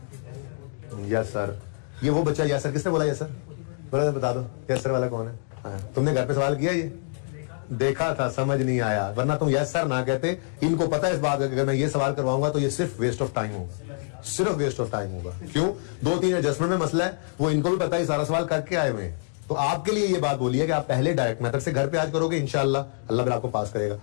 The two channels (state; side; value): silent; right; digital silence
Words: यस सर, ये वो बच्चा, यस सर किसने बोला यस सर? बोला बता दो यस सर वाला कौन है? हाँ, तुमने घर पे सवाल किया, ये देखा था, समझ नहीं आया, वरना तुम यस सर ना कहते। इनको पता है इस बात का, अगर मैं ये सवाल करवाऊंगा तो ये सिर्फ वेस्ट ऑफ टाइम होगा, सिर्फ वेस्ट ऑफ टाइम होगा। क्यों? 2-3 एडजस्टमेंट में मसला है, वो इनको भी पता है, सारा सवाल करके आए हुए हैं। तो आपके लिए ये बात बोली है कि आप पहले डायरेक्ट मेथड से घर पे आज करोगे, इंशाल्लाह अल्लाह फिर आपको पास करेगा,